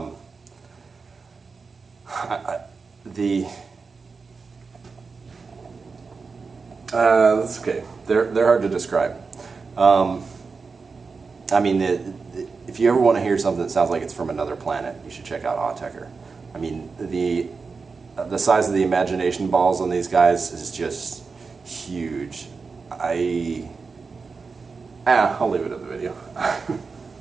that's okay. They're hard to describe. If you ever want to hear something that sounds like it's from another planet, you should check out Autechre. I mean, the size of the imagination balls on these guys is just huge. I'll leave it in the video.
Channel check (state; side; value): quieter; left; 4.7 dB